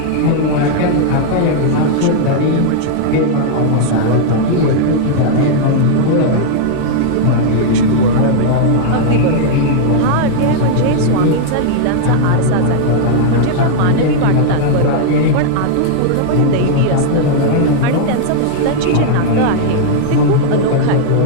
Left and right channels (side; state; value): both; different; correlation -0.01